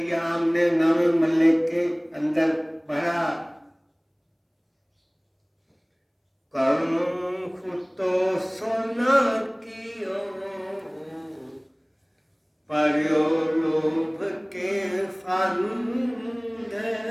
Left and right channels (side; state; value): both; identical; correlation 1.00